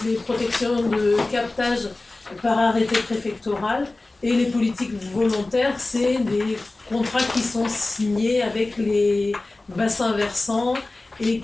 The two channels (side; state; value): right; quieter; 3.1 dB